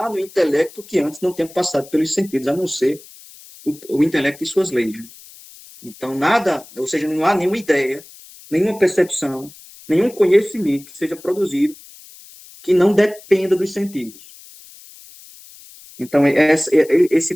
no intelecto que antes não tenha passado pelos sentidos, a não ser o intelecto e suas leis. Então, nada, ou seja, não há nenhuma ideia, nenhuma percepção, nenhum conhecimento que seja produzido que não dependa dos sentidos. Então, esse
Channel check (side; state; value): left; noise; hiss, 21 dB below the sound